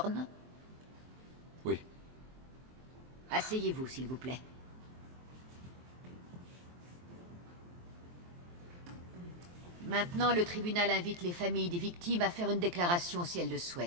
Oui. Asseyez-vous, s'il vous plaît. Maintenant, le tribunal invite les familles des victimes à faire une déclaration si elles le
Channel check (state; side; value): late; left; 23 ms